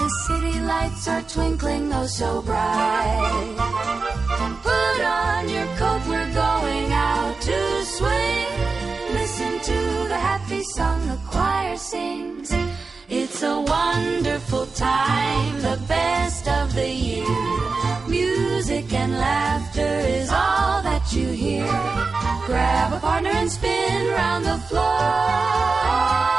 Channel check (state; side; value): quieter; left; 4.2 dB